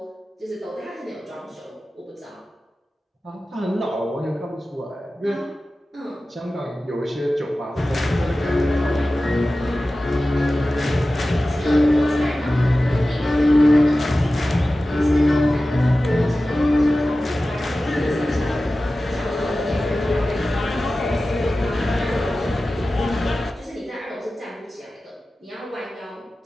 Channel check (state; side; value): normal; both; correlation 0.95